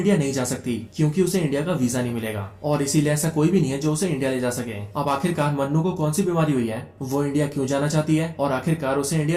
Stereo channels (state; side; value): identical; both; correlation 1.00